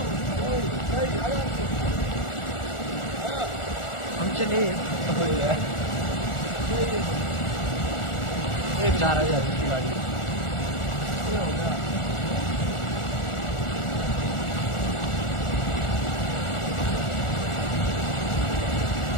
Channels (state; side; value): late; right; 1.4 ms